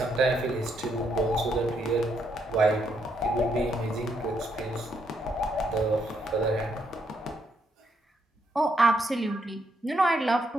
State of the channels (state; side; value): normal; both; correlation 0.76